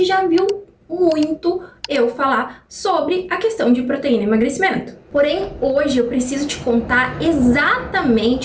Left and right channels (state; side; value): identical; both; correlation 1.00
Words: já viu muito eu falar sobre a questão de proteína e emagrecimento. Porém, hoje eu preciso te contar